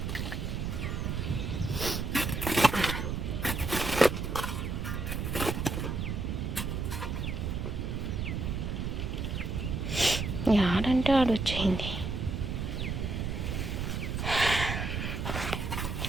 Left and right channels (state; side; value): noise; right; rumble, 2 dB below the sound